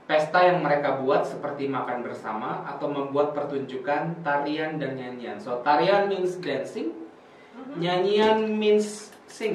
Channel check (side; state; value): both; identical; correlation 1.00